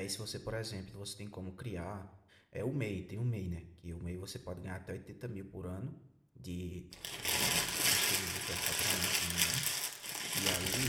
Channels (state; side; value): identical; both; correlation 1.00